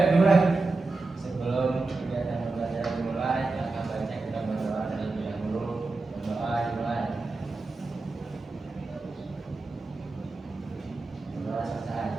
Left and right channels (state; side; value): quieter; left; 3.5 dB